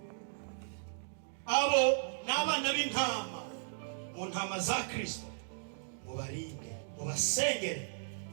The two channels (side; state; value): left; silent; digital silence